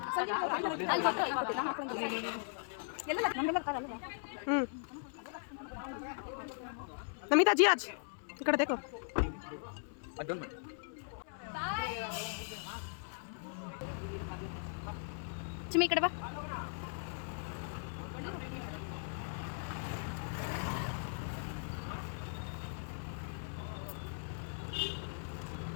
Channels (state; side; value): silent; right; 52 dB below the other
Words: नमिता जी आज इकड़े देखो ಚಿಮ್ಮಿ ಈ ಕಡೆ ಬಾ.